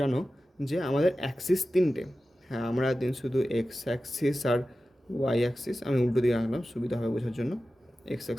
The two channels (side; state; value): both; normal; correlation 0.94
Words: যে আমাদের অ্যাক্সিস 3টে। হ্যাঁ, আমরা দিন শুধু এক্স অ্যাক্সিস আর ওয়াই অ্যাক্সিস, আমি উল্টো দিকে আনলাম সুবিধা হবে বোঝার জন্য, এক্স